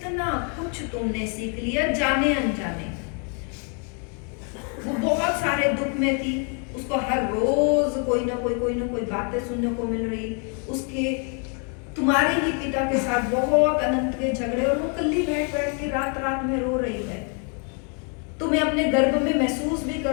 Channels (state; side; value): quieter; right; 38.4 dB